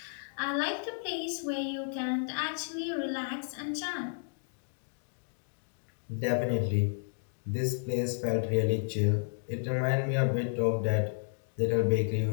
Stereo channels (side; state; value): right; silent; digital silence